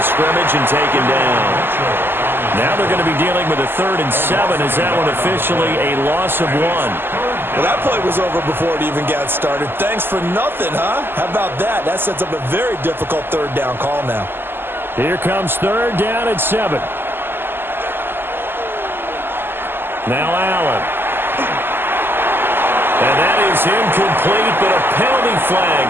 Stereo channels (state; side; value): late; left; 0.10 ms